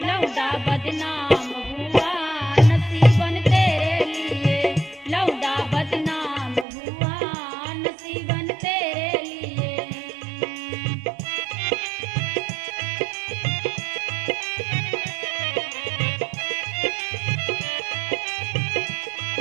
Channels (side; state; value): left; drops out; at 6.7 s